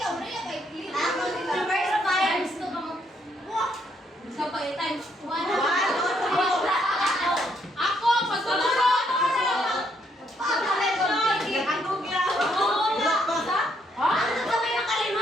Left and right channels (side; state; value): both; normal; correlation 0.72